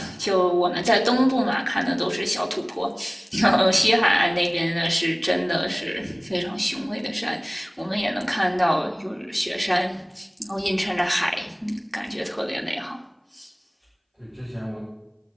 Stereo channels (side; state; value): both; identical; correlation 1.00